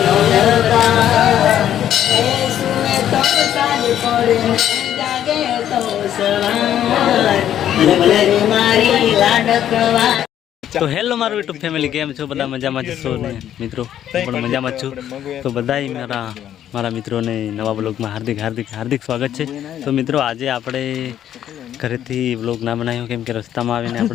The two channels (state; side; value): quieter; right; 10.8 dB